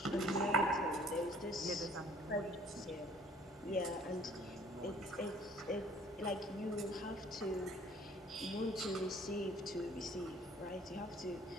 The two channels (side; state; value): both; normal; correlation 0.55